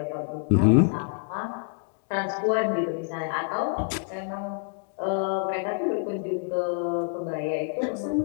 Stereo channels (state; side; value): silent; right; digital silence